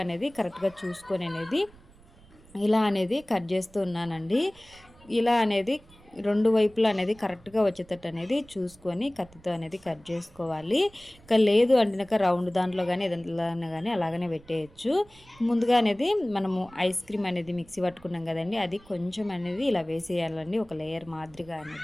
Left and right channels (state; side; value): noise; right; rumble, 25 dB below the sound